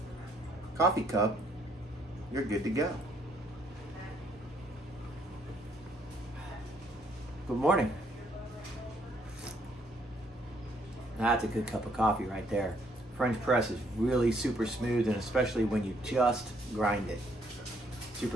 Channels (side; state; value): both; normal; correlation 0.68